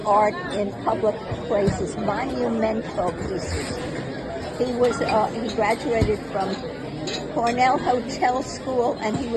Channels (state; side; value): identical; both; correlation 1.00